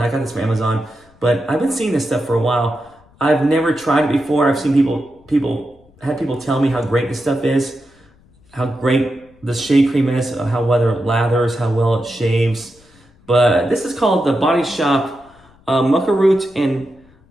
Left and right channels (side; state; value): left; noise; rumble, 30 dB below the sound